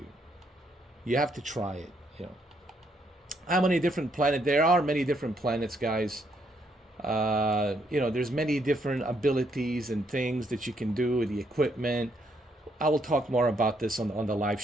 You have to try it, you know. How many different planets? There are many different planets, guys. You know, there's many different abilities and things that you can do, the equipment. I will talk more about this on the live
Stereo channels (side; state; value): both; normal; correlation 0.73